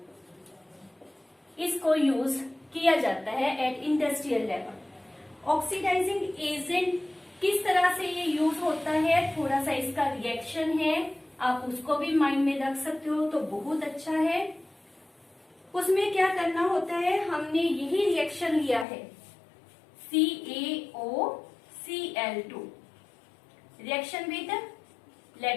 इसको यूज किया जाता है at industrial level. Oxidising agent किस तरह से ये यूज होता है, थोड़ा सा इसका रिएक्शन है, आप उसको भी माइंड में रख सकते हो तो बहुत अच्छा है। उसमें क्या करना होता है, हमने यही रिएक्शन लिया है CaOCl2 reaction with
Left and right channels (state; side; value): drops out; right; at 18.9 s